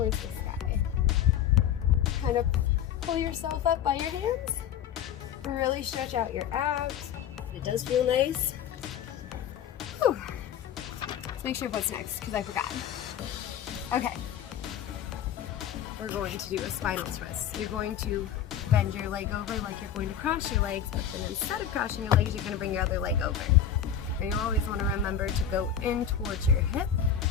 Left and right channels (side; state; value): right; quieter; 9.0 dB